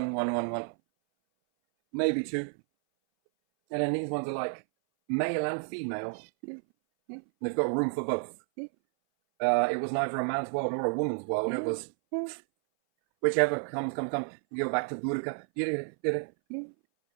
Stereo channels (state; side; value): silent; left; 57 dB below the other